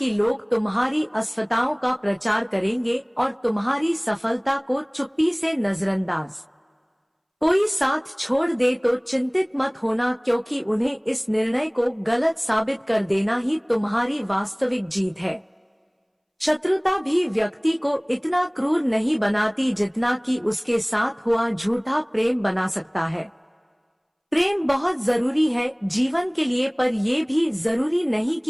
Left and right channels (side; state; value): both; identical; correlation 1.00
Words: लोग तुम्हारी असफलताओं का प्रचार करेंगे और तुम्हारी सफलता को चुप्पी से नजरअंदाज। कोई साथ छोड़ दे तो चिंतित मत होना, क्योंकि उन्हें इस निर्णय को गलत साबित कर देना ही तुम्हारी वास्तविक जीत है। शत्रुता भी व्यक्ति को इतना क्रूर नहीं बनाती जितना कि उसके साथ हुआ झूठा प्रेम बना सकता है। प्रेम बहुत जरूरी है जीवन के लिए, पर यह भी जरूरी नहीं